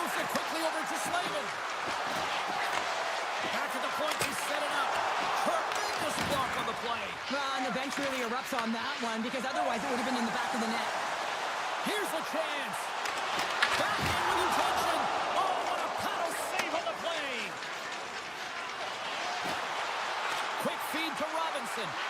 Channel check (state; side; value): identical; both; correlation 1.00